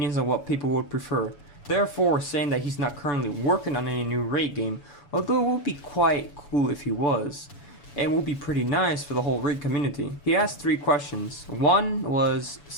on what people would prefer." Therefore, saying that he's not currently working on any new Rake game, although it would be quite cool if he was, and would be pretty nice for the whole Rake community. He asked 3 questions. One was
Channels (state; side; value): late; right; 7.0 ms